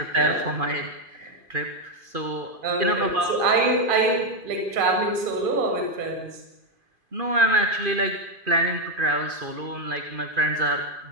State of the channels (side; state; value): left; late; 2.5 ms